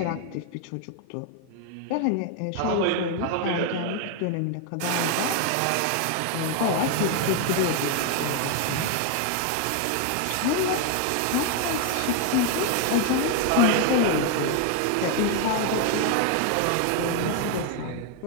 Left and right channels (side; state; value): both; different; correlation 0.01